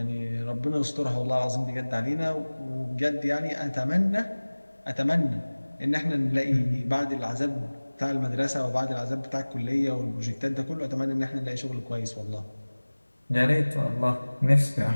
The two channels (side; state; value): both; inverted; correlation -1.00